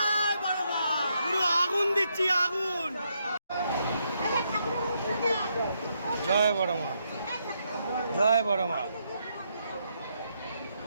বড় মা। পুরো আগুন দিচ্ছি আগুন। জয় বড় মা, জয় বড় মা,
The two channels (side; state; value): both; inverted; correlation -0.78